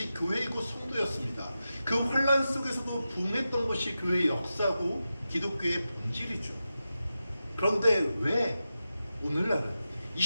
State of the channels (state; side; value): inverted; both; correlation -0.92